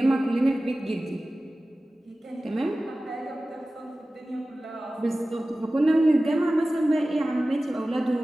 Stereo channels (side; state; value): both; normal; correlation 0.96